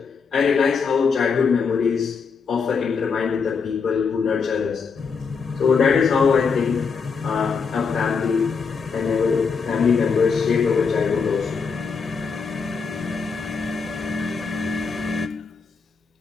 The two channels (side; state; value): right; quieter; 5.4 dB